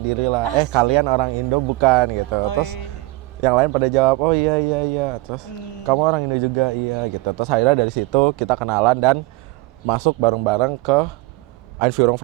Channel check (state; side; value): quieter; left; 20.8 dB